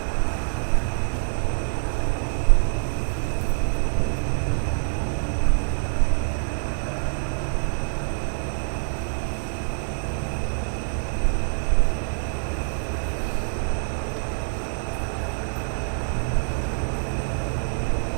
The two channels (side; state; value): left; silent; 61 dB below the other